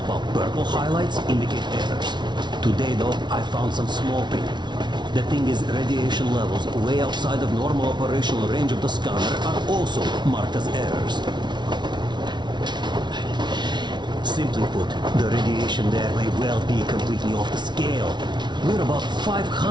while purple highlights indicate errors. Today, though, I found some small print. The thing is, radiation levels way outside of normal operational range of the scanner are also marked as errors. Simply put, the radiation there may well be completely off the scale. We're about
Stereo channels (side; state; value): left; late; 0.21 ms